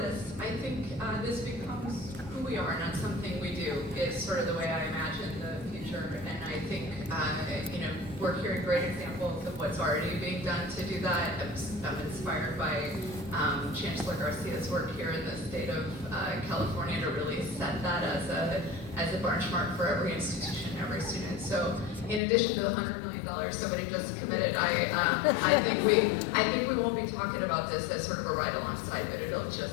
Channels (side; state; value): right; drops out; at 22.2 s